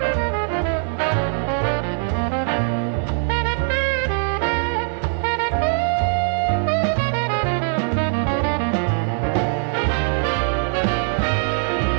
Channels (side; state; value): left; silent; digital silence